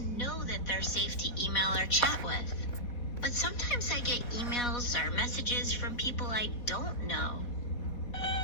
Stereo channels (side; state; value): right; late; 4.2 ms